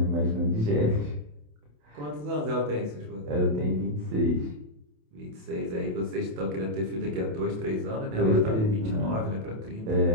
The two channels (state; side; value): late; left; 27 ms